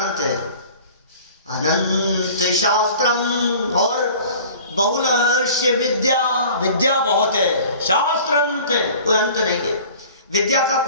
है, अनंत शास्त्रम, और बहुलश्च विद्या, विद्या बहुत है, शास्त्र अनंत है, कोई अंत नहीं है, विद्या का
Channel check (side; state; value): both; inverted; correlation -0.45